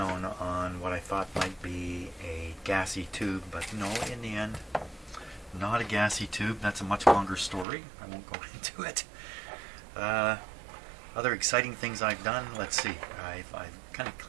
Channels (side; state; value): left; drops out; at 7.7 s